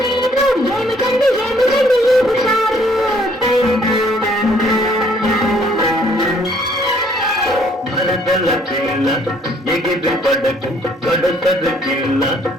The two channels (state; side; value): normal; both; correlation 0.62